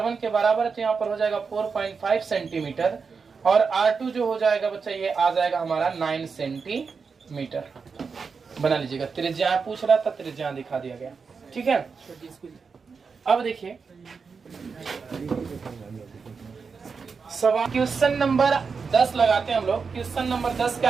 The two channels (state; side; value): quieter; left; 5.3 dB